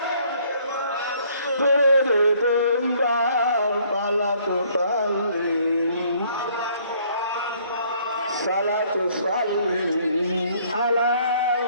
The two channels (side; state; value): both; inverted; correlation -0.62